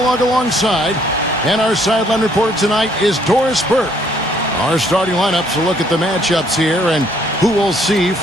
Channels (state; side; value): normal; both; correlation 0.65